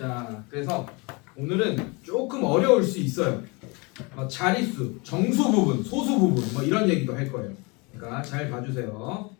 그래서 오늘은 조금 어려울 수 있어요. 자릿수, 정수 부분, 소수 부분 뭐 이런 얘기도 할 거예요. 그러니까 잘 봐주세요.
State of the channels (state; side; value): quieter; right; 28.5 dB